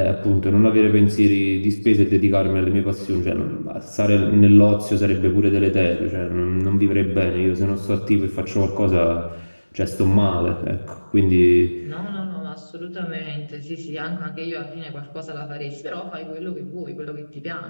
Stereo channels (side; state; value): both; inverted; correlation -1.00